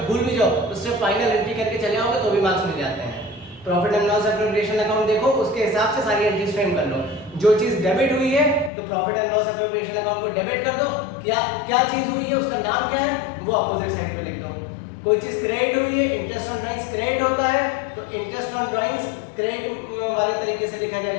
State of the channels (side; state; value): right; drops out; at 8.7 s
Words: भूल भी जाओ तो सिर्फ फाइनल एंट्री करके चले आओगे तो भी मार्क्स मिल जाते हैं। Profit and loss appropriation account देखो, उसके हिसाब से सारी एंट्रीज फ्रेम कर लो। जो चीज डेबिट हुई है तो profit and loss appropriation account को डेबिट कर दो। क्या चीज हुई है, उसका नाम क्या है, वो अपोजिट साइड पे लिख दो। कोई चीज क्रेडिट हुई है, इंटरेस्ट ऑन ड्राइंग्स क्रेडिट होता है, तो इंटरेस्ट ऑन ड्राइंग्स क्रेडिट वाले तरीके से लिखा